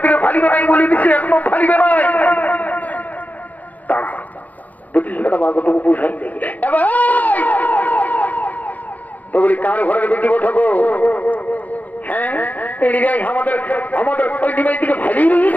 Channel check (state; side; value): late; right; 0.077 ms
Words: ফালিবে নাই বলে দিচ্ছি একদম ফালিবে নাই বিটিটা বাগটুকু বুঝাই তো বলি কার ঘরের বেটি ওঠো হ্যাঁ আমাদের আমাদের ওই ডিমাই থেকে ফালিয়ে